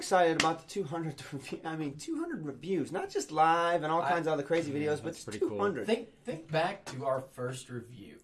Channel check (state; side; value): identical; both; correlation 1.00